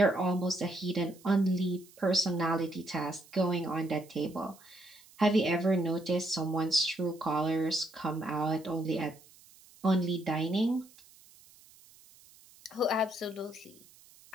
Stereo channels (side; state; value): right; noise; hiss, 25 dB below the sound